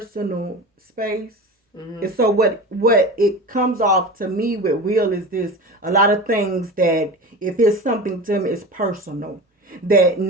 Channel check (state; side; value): normal; both; correlation 0.31